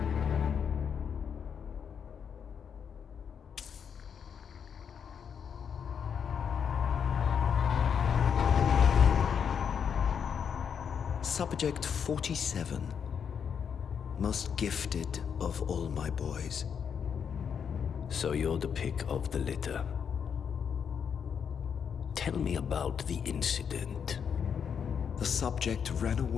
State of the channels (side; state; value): right; quieter; 7.3 dB